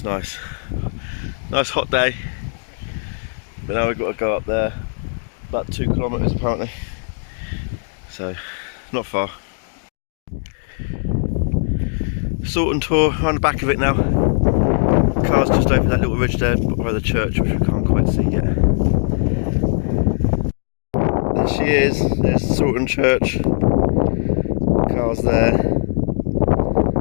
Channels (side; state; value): right; silent; digital silence